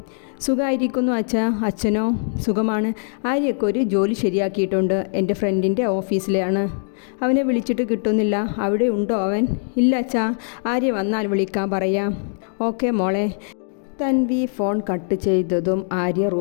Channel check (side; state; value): right; silent; digital silence